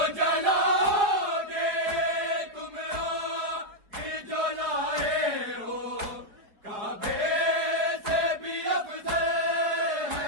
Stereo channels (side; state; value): left; late; 4.5 ms